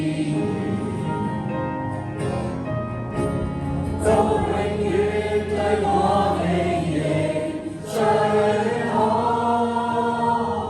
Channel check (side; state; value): both; identical; correlation 1.00